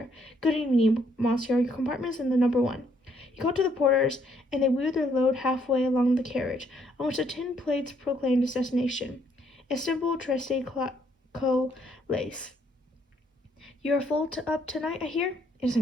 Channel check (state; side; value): normal; both; correlation 0.69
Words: Good evening, monsieur. Your compartment is in the number 1. He called to the porters, and they wheeled their load halfway along the carriage, on which the tin plates proclaimed its destination. Istanbul, Trieste, Lace. You are full up tonight, I hear? It is